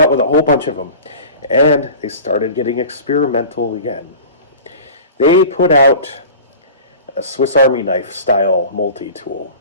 with a whole bunch of them. And they started getting experimental again. They put out a Swiss Army knife style multi-tool.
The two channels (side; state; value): both; inverted; correlation -0.39